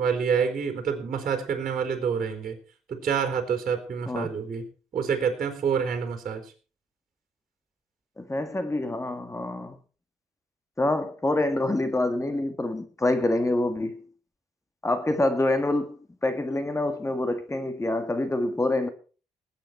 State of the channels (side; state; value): both; normal; correlation 0.76